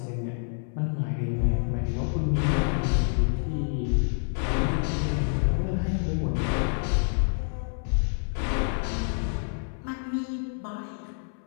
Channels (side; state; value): right; silent; 60 dB below the other